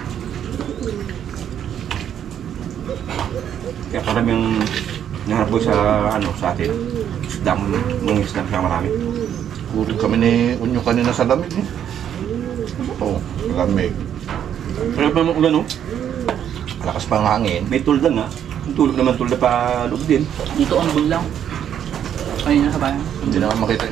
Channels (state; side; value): quieter; left; 9.5 dB